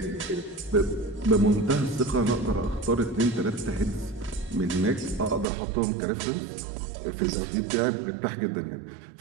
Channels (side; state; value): left; drops out; at 5.5 s